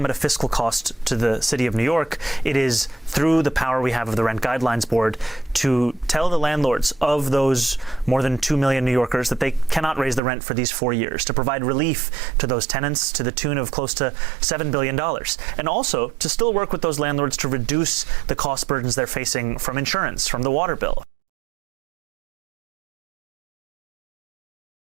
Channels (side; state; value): left; drops out; at 10.2 s